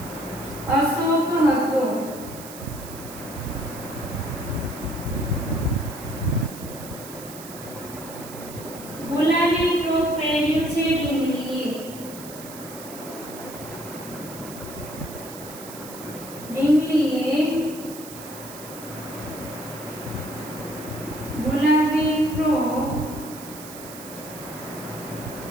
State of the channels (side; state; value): right; noise; hiss, 14 dB below the sound